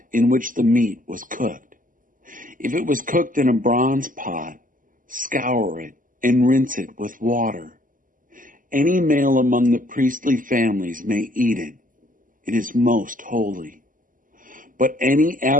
in which the meat was cooked. If it was cooked in a bronze pot, scour it and rinse it with water. Any male among the priestly families may eat it. It is most holy. But any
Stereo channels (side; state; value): left; late; 0.39 ms